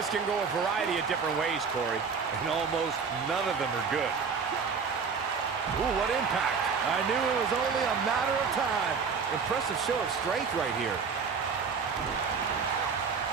can go a variety of different ways, Corey. And almost none of them are good. Ooh, what impact. I knew it was only a matter of time. Impressive show of strength right here.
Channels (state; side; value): quieter; left; 5.6 dB